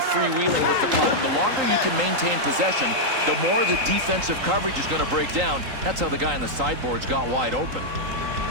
with the puck. The longer you can maintain possession, the more the defensive coverage is going to break down. That's how the guy on the sideboards got wide open.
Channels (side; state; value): left; late; 3.8 ms